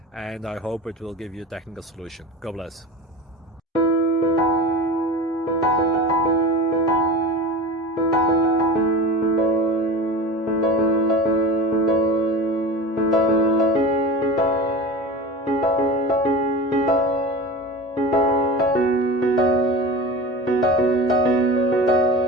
and I hope it will give you a technical solution. God bless.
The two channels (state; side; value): normal; both; correlation 0.31